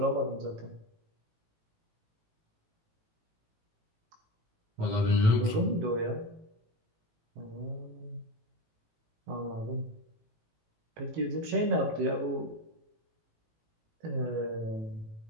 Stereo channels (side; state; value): left; late; 18 ms